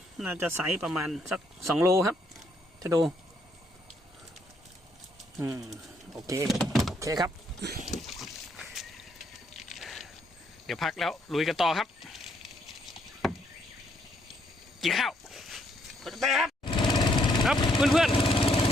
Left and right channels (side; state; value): both; normal; correlation 0.71